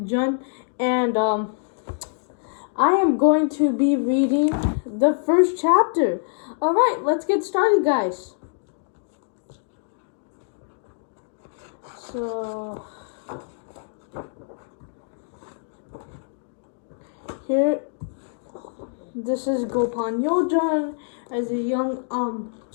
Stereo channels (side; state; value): right; silent; digital silence